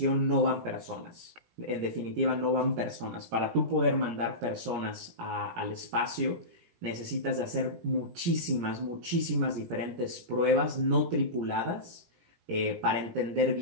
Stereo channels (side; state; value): left; late; 18 ms